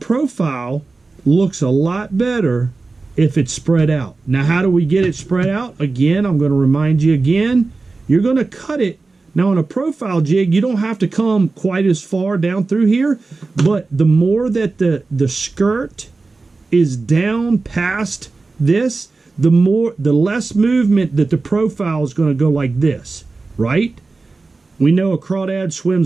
looks a lot better if it's spread out. Now, how do we get it spread out? Again, I'm going to remind you again, you're going to cut it. Now, on a profile jig, you don't have to come quite as far down through here, but the more that the skirt is down past this, the less movement that the profile is going to go like this, right? We know a crawdad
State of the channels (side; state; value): left; quieter; 3.8 dB